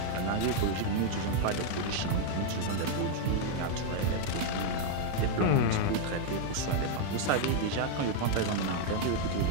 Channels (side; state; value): both; different; correlation 0.00